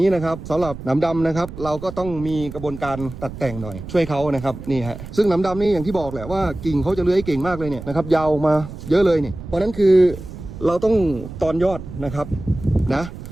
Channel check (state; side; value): noise; right; rumble, 12 dB below the sound